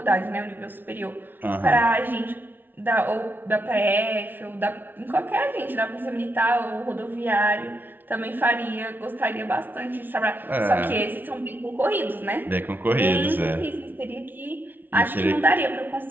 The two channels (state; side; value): late; left; 0.092 ms